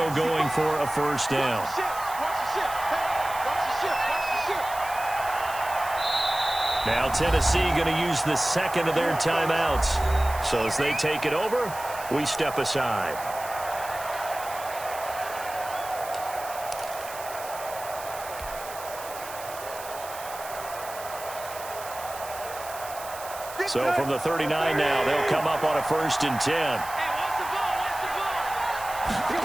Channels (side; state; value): right; noise; hiss, 13 dB below the sound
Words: going for a first down. Now Tennessee going to use the second of their timeouts. So as they take it over, we step aside. So from the 39 now, they'll come up on a 1st and 10.